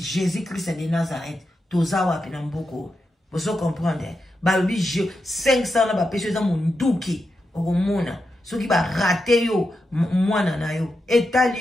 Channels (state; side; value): normal; both; correlation 0.87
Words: Christ de Nazareth toza wapi na mboko bozo comprendre balobi 500 na bapesi eza monduki okomona soki barate yo mwana na yo